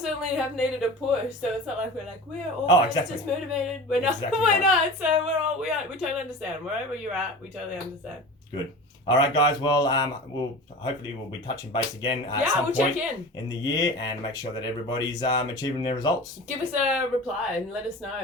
have needed a push, so it's not like we're always just motivated. We're not. Exactly we're right. not. So we totally understand. Wherever you're at, we totally understand. Good. All right, guys. Well, we'll be touching base again at some point check in the year and make sure that everybody's achieving their results. Give us a reply and let us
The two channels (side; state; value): both; normal; correlation 0.34